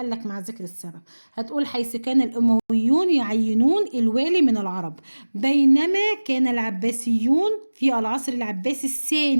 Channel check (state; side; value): inverted; both; correlation -1.00